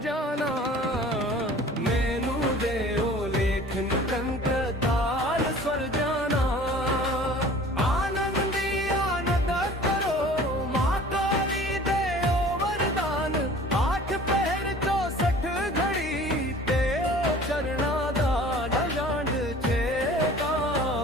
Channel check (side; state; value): both; normal; correlation 0.46